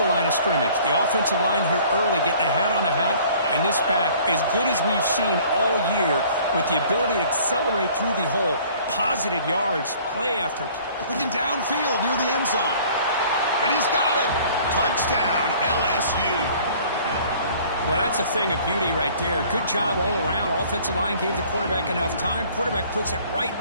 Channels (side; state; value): both; inverted; correlation -0.53